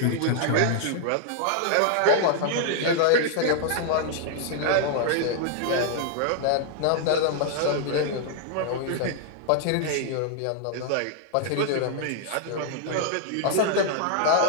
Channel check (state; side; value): different; both; correlation 0.00